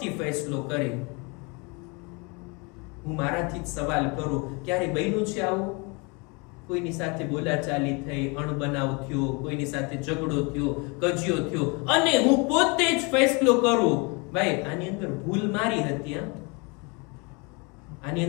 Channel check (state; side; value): quieter; right; 30.7 dB